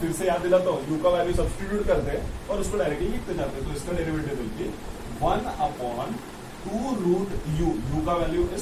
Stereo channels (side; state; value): both; identical; correlation 1.00